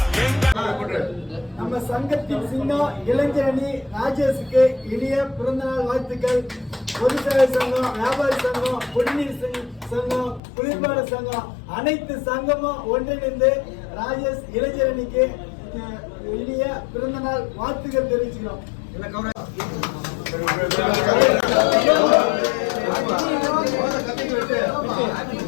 நம்ம சங்கத்தின் சின்னம் இளைஞரணி ராஜேஷுக்கு இனிய பிறந்தநாள் வாழ்த்துக்கள். பொதுச்சேவை சங்கம், வியாபாரி சங்கம், குடிநீர் சங்கம், குளிர்பாடு சங்கம் அனைத்து சங்கமும் ஒன்றிணைந்து ராஜேஷ் இளைஞரணிக்கு இனிய பிறந்தநாள் வாழ்த்துக்கள் தெரிவிச்சுக்கிறோம்.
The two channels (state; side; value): drops out; right; at 10.4 s